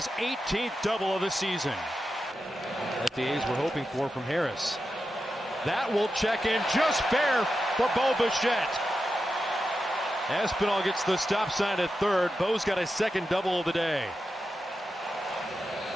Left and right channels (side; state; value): both; normal; correlation 0.90